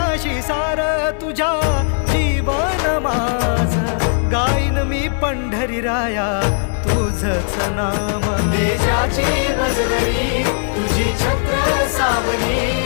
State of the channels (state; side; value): silent; right; digital silence